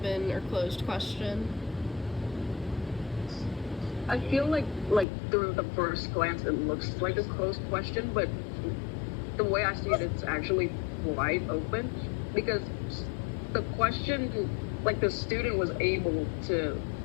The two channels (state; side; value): drops out; right; at 5.1 s